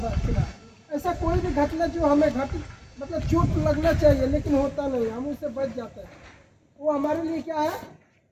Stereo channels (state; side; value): identical; both; correlation 1.00